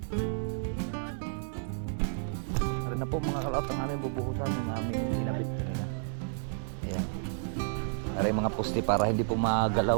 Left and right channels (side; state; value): left; silent; digital silence